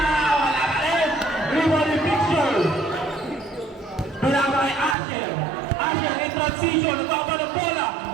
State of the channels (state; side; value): drops out; left; at 5.0 s